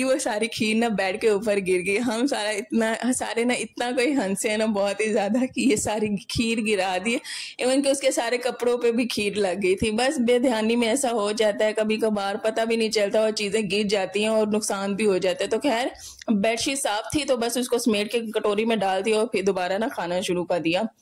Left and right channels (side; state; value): both; identical; correlation 1.00